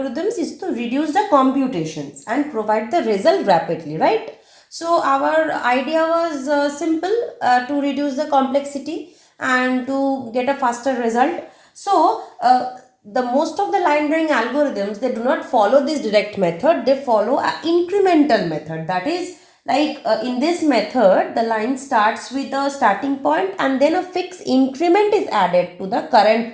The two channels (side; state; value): both; identical; correlation 1.00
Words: is to reduce the computations and provide the result rapidly, right? So our idea was simple, to reduce the complexity and to get a faster result. So the most of the line drawing algorithms, they do not follow this direct method, they follow an incremental method. That is, like in this method, the line starts with a starting point and then a fixed increment is added to the current